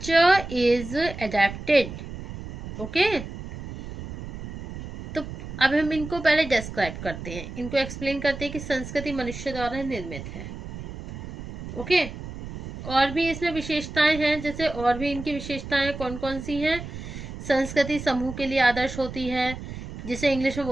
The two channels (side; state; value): right; noise; rumble, 10 dB below the sound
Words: इज एडेप्टेड। ओके, तो अब हम इनको पहले डिस्क्राइब करते हैं, इनको एक्सप्लेन करते हैं कि संस्कृति मनुष्य द्वारा निर्मित है। ओके, और भी इसमें विशेषताएं हैं, जैसे और भी इनकी विशेषताएं कौन कौन सी हैं। संस्कृति समूह के लिए आदर्श होती है, जिसे इंग्लिश में